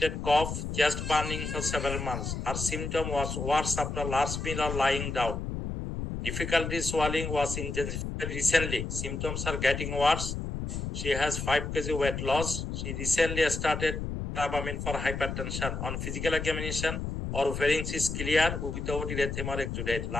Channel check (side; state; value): left; noise; rumble, 4 dB below the sound